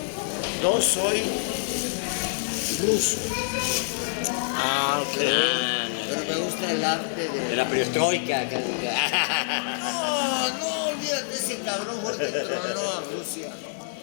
Yo soy ruso, Ok. pero me gusta el arte De de... la perestroika. No, olvídate, ese cabrón fue el que tronó a Rusia.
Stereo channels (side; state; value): right; silent; 56 dB below the other